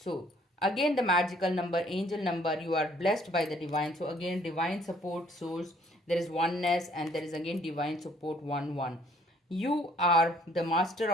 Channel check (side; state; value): both; normal; correlation 0.61